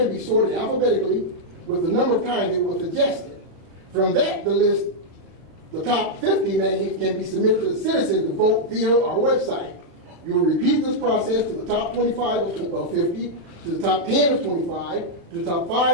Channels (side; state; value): left; late; 36 ms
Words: be sorted alphabetically with the number of times it was suggested. From that, the top 50 names can be submitted to the citizens to vote via our website. You will repeat this process to the top 25 of 50, to the top 10 of 25, to the top